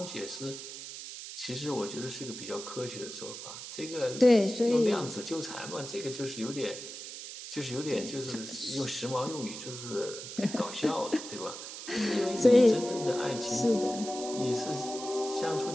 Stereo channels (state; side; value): noise; right; hiss, 10 dB below the sound